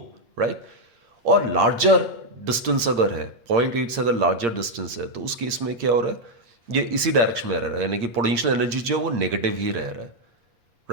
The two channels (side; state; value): left; late; 8.7 ms